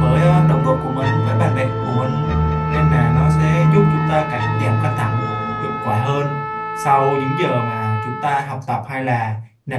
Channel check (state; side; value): identical; both; correlation 1.00